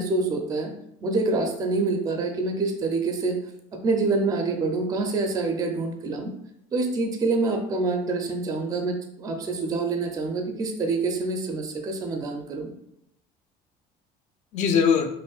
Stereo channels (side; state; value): both; normal; correlation 0.35